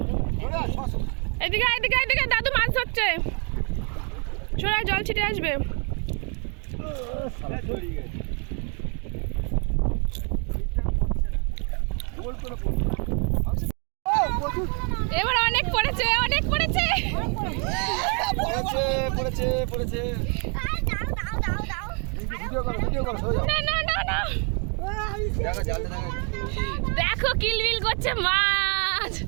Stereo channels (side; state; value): left; quieter; 37.7 dB